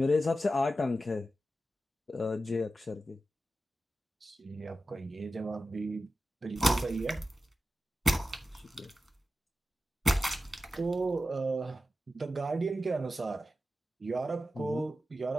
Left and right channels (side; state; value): both; normal; correlation 0.92